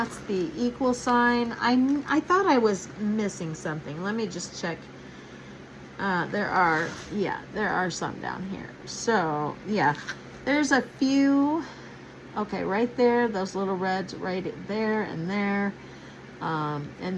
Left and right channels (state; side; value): identical; both; correlation 1.00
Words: the equal sign. I thought I was missing something. Let me just check. There are some down here. So, yeah, there's a few. Okay, right there, those little reds right there and there.